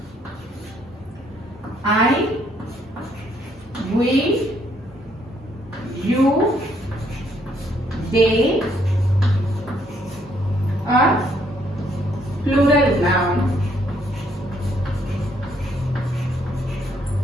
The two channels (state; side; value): normal; both; correlation 0.69